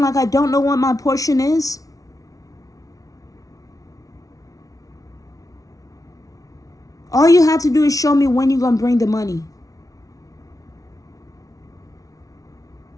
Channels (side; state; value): right; late; 0.17 ms